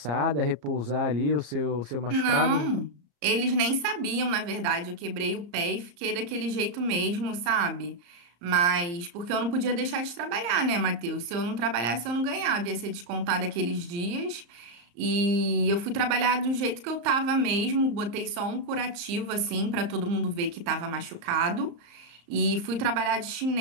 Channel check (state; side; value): late; left; 35 ms